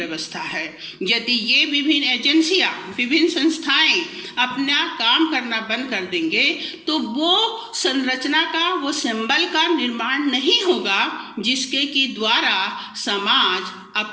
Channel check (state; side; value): identical; both; correlation 1.00